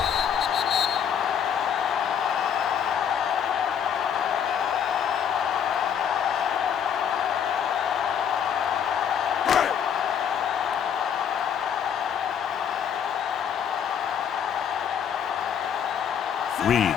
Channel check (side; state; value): right; quieter; 8.2 dB